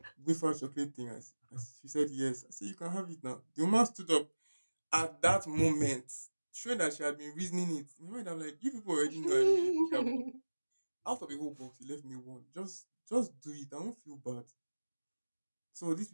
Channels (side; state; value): both; inverted; correlation -1.00